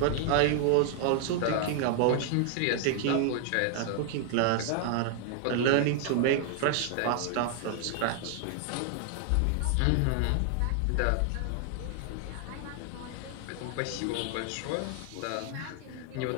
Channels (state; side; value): different; both; correlation 0.00